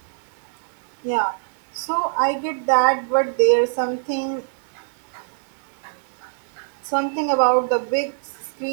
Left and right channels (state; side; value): silent; left; digital silence